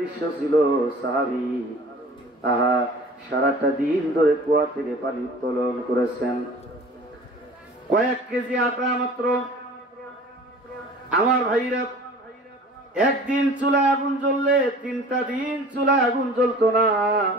ছিল, সাহাবী সারাটা দিন ধরে কুয়া থেকে পানি উত্তোলন করেছেন, কয়েক কেজি আটা মাত্র। আমার ভাইরা, একদিন চুলায় আগুন জ্বললে 3টা দিন চুলায় আগুন জ্বলতো না।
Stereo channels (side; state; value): both; normal; correlation 0.44